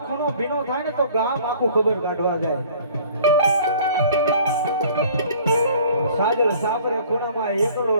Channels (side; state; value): both; inverted; correlation -0.52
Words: ખૂણો ભીનો થાય ને તો ગામ આખું ખબર કાઢવા જાય. સાજલ સાપરે ખૂણામાં એકલો